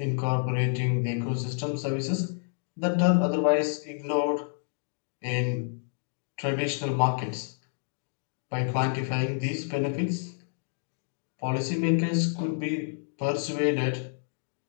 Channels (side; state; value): right; silent; digital silence